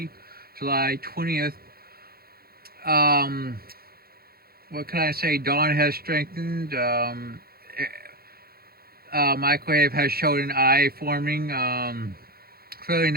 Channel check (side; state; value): left; late; 0.44 ms